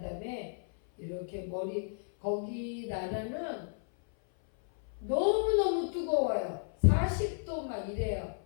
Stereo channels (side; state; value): right; silent; 56 dB below the other